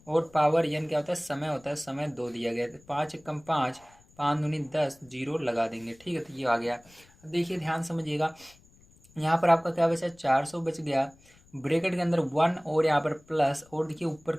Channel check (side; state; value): left; noise; rumble, 28 dB below the sound